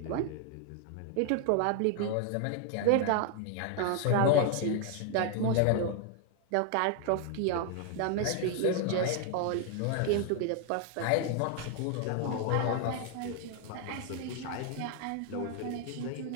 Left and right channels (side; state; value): both; different; correlation 0.00